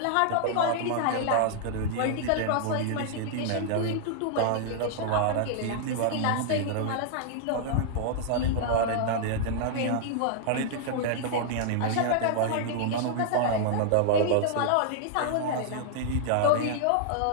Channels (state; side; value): different; both; correlation -0.01